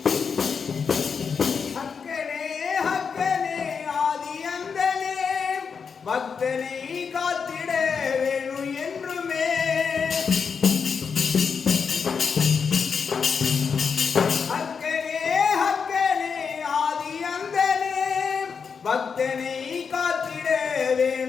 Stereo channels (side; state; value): right; quieter; 6.0 dB